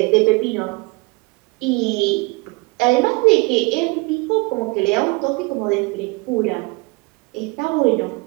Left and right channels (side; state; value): left; quieter; 26.5 dB